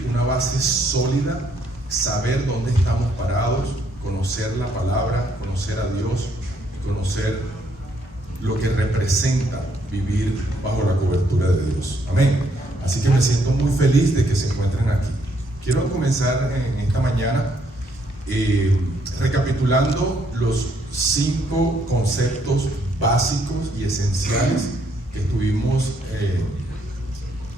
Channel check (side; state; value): both; normal; correlation 0.70